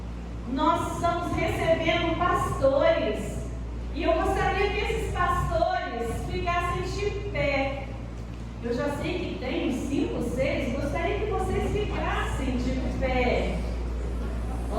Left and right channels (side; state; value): both; identical; correlation 1.00